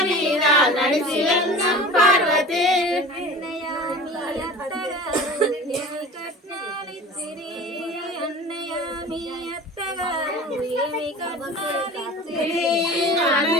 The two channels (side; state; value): both; normal; correlation 0.38